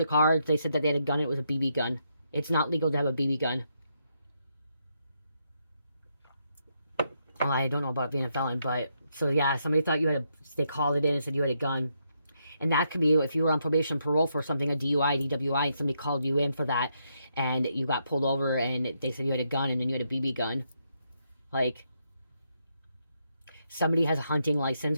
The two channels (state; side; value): inverted; both; correlation -0.79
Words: car. They said that they had a gun. It was a BB gun. It's not legal to have a BB gun. Well, I don't know about being a felon, but so yeah, somebody thought you had a. They called it in and said you had a gun, and that could be if you were on probation, parole for something, a DUI, DWI, and somebody called you in for that, and you got pulled over, and they said you had a gun, and then you had a BB gun, like. Somebody has a hunting license,